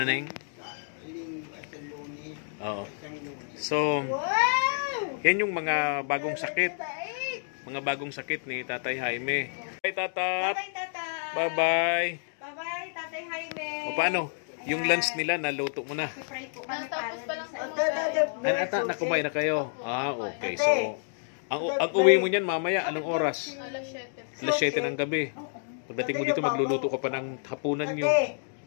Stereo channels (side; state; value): right; silent; 59 dB below the other